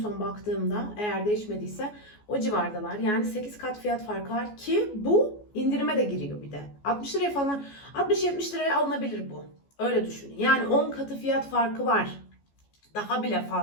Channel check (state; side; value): late; right; 14 ms